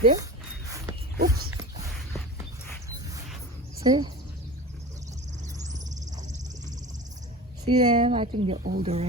Oops. See? See them? I think they're old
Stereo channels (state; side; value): normal; both; correlation 0.34